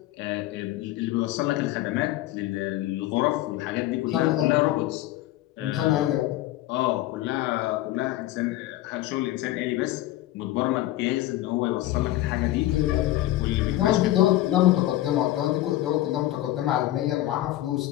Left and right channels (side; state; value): right; quieter; 15.4 dB